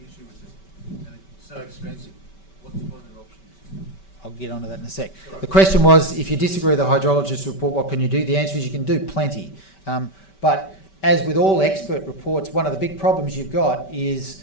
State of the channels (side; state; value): right; late; 5.2 ms